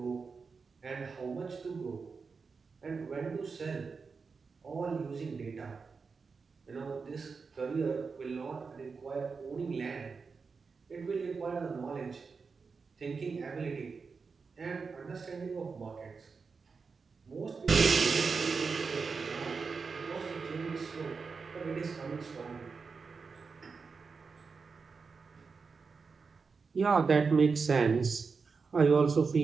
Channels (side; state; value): left; quieter; 5.0 dB